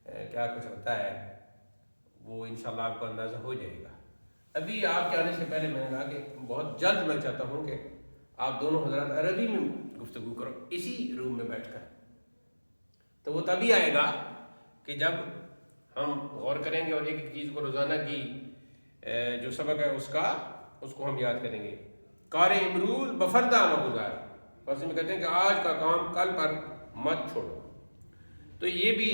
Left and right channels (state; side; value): inverted; both; correlation -1.00